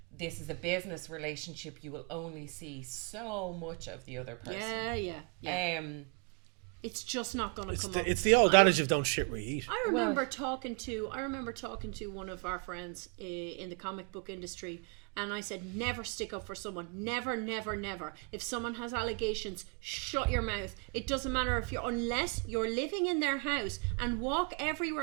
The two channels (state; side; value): quieter; left; 35.1 dB